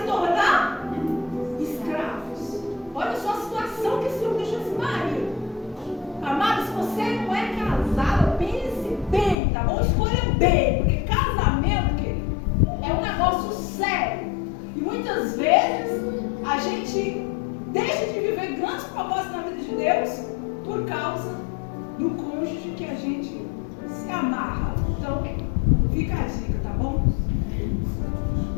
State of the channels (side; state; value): right; drops out; at 9.3 s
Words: tornar escravos. Olha só a situação que esse homem deixou esse marido. Amado, se você não é casada, pense bem, tá bom? Escolha bem, porque casamento, querido, é um negócio sério. E muitas vezes a gente deixa de viver grandes propósitos na vida de Deus por causa do cônjuge que a gente se amarra. Então, fica a dica, tá bom?